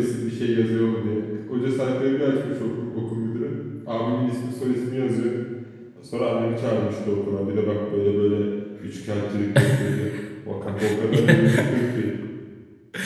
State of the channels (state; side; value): identical; both; correlation 1.00